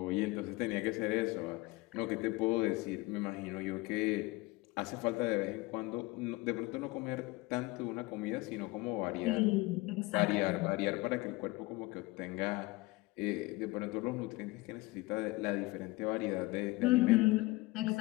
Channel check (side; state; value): right; quieter; 21.9 dB